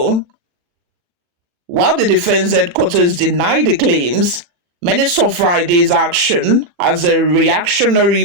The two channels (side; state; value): left; late; 40 ms